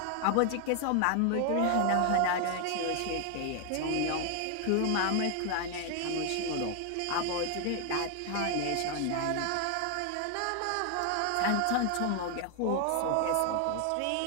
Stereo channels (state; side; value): different; both; correlation 0.00